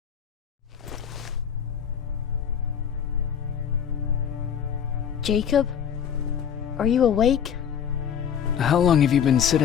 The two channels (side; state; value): right; quieter; 8.4 dB